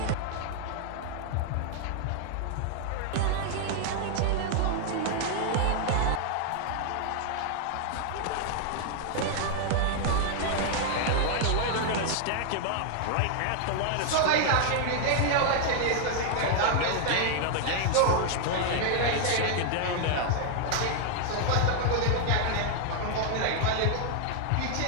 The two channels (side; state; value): both; different; correlation 0.00